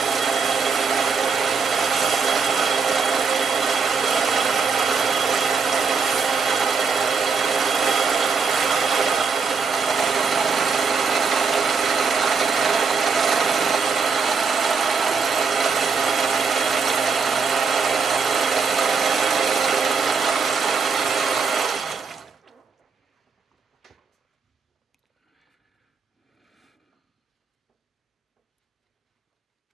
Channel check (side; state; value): left; quieter; 5.3 dB